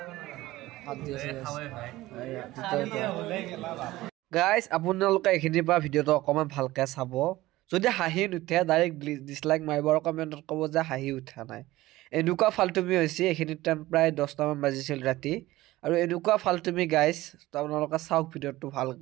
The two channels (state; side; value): quieter; left; 17.5 dB